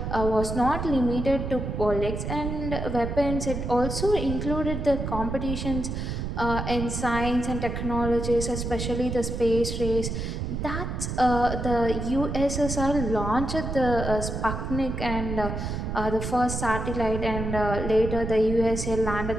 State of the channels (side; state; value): right; noise; rumble, 4 dB below the sound